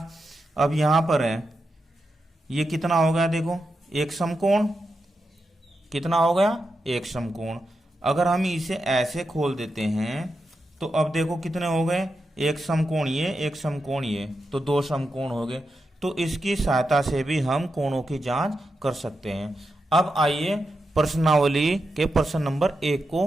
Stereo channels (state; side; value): normal; both; correlation 0.87